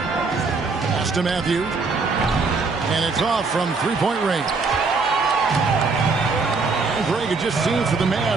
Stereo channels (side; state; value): left; quieter; 4.3 dB